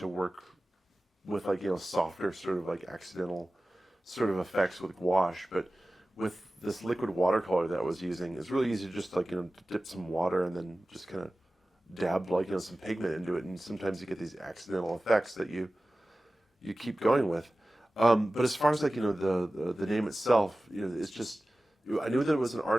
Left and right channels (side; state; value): both; normal; correlation 0.96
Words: work with like, softer sort of like accidental sort of effects with gouache, but with this liquid watercolor that I was using, it's really easy to just like, dip some water and then just kind of dab like, some pigment into it, and sometimes you get these accidental effects that you keep going with. But as far as like, the name itself, it's just, I knew that it was an